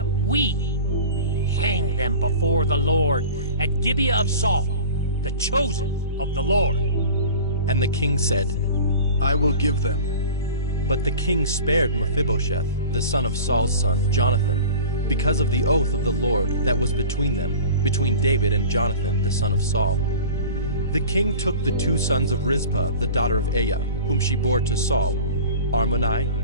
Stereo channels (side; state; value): both; inverted; correlation -0.38